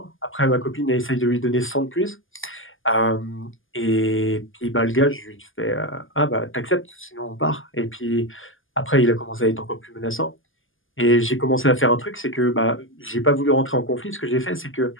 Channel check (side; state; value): right; late; 0.58 ms